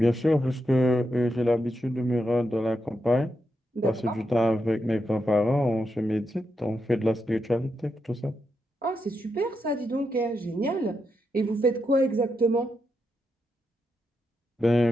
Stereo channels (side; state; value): both; normal; correlation 0.85